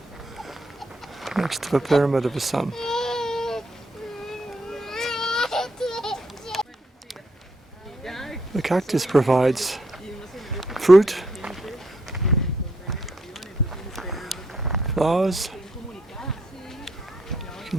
Next to the pyramid of the sun. The cactus provides fruit, flowers. You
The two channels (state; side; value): normal; both; correlation 0.74